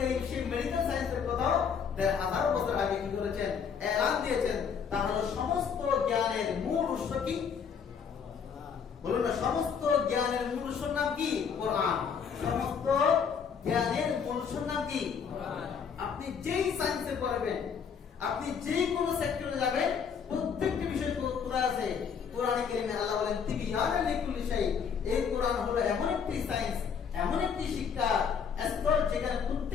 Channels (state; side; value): quieter; right; 6.8 dB